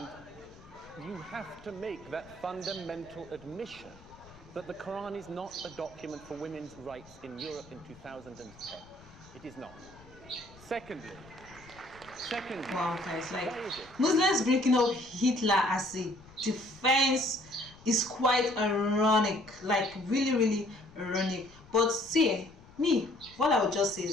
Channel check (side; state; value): left; noise; rumble, 22 dB below the sound